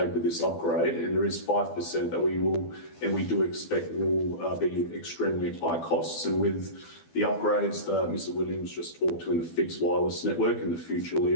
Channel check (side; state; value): right; late; 12 ms